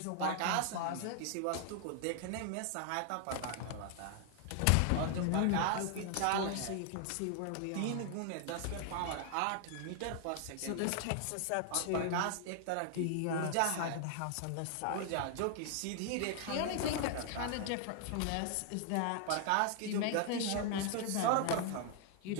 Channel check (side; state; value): both; different; correlation 0.00